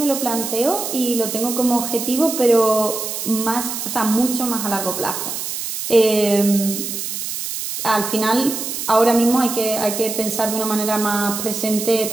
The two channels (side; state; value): right; noise; hiss, 5 dB below the sound